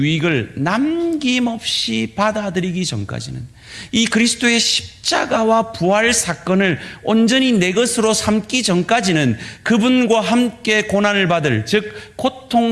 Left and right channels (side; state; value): both; identical; correlation 1.00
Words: 남김없이 받아들이기 전까지는, 이 그리스도의 십자가와 부활 사건을 온전히 내 것으로 삼기 전까지는 그분과 함께 고난을 받을, 즉